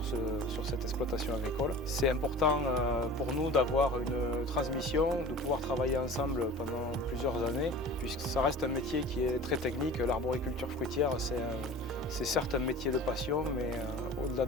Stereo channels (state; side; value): normal; both; correlation 0.39